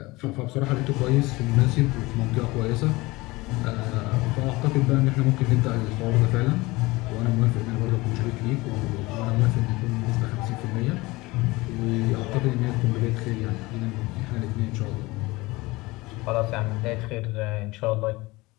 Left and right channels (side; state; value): right; quieter; 21.8 dB